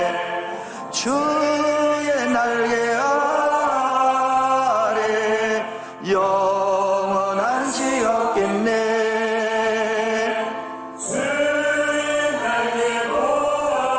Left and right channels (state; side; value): identical; both; correlation 1.00